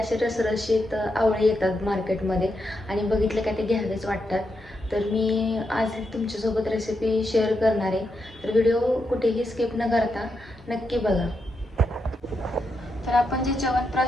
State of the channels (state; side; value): normal; both; correlation 0.84